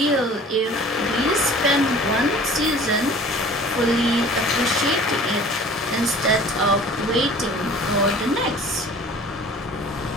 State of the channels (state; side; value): normal; both; correlation 0.46